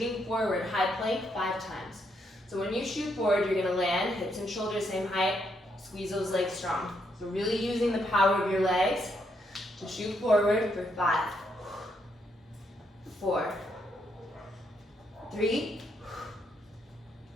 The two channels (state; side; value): normal; both; correlation 0.76